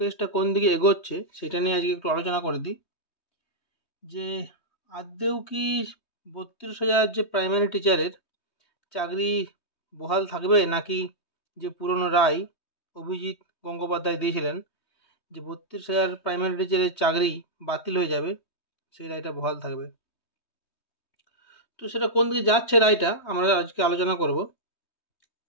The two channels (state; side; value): late; right; 3.2 ms